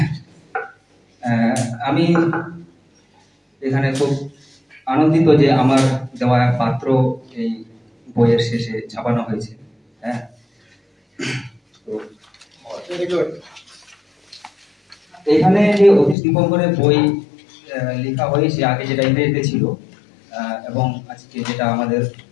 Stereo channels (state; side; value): drops out; right; at 16.2 s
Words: আমি এখানে খুব আনন্দিত যে আমার দেওয়া পাত্র এই বইয়ের শেষে ছাপানো হয়েছে। হ্যাঁ, এখানে যে অতীশ দীপঙ্করের বই লেখা হয়েছে, আগে যেটা ইংরেজিতে ছিল এবং আজকে যেটা আমাদের